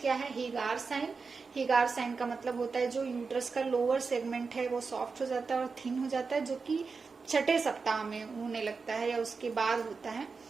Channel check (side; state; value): left; quieter; 4.7 dB